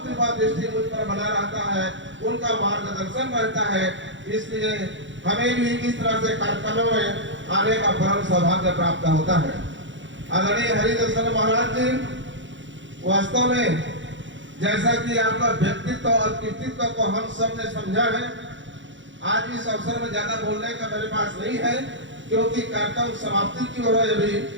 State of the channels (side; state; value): left; late; 0.54 ms